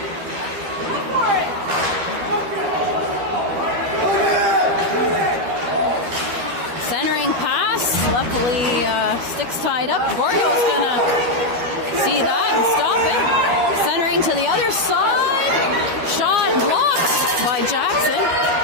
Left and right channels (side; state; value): left; late; 12 ms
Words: Centering pass, luckily sticks tied up. Gordo's gonna see that and stop it. Centering to the other side. Shot blocked by Jackson.